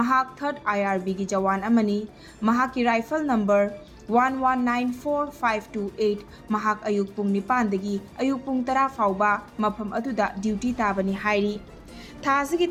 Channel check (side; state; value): both; identical; correlation 1.00